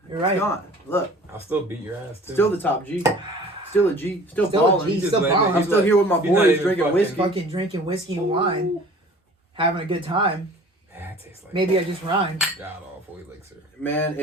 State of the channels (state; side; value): normal; both; correlation 0.46